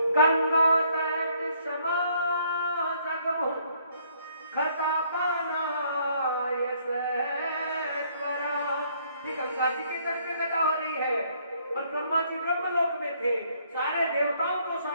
गंगा तट समा जगमु खता बनाय सत्वरा। गंगा जी के तट पे कथा हो रही है, और ब्रह्मा जी ब्रह्मलोक में थे, सारे देवताओं को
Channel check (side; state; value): both; inverted; correlation -0.66